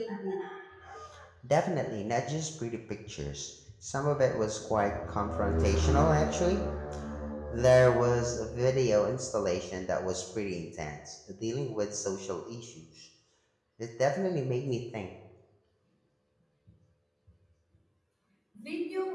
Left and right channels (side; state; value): both; identical; correlation 1.00